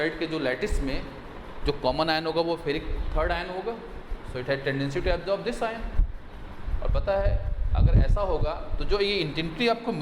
के जो लैटिस में जो कॉमन आयन होगा वो फेरिक थर्ड आयन होगा। So it has tendency to absorb this ion. और पता है अगर ऐसा होगा तो जो ये इंटेंसिटी आपको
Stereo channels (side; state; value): both; identical; correlation 1.00